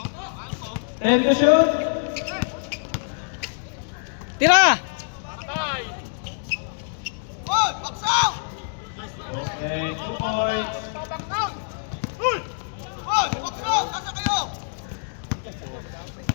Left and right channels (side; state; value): right; silent; digital silence